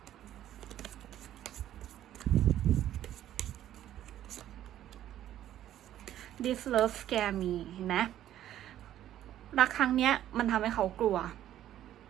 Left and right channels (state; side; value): quieter; left; 12.1 dB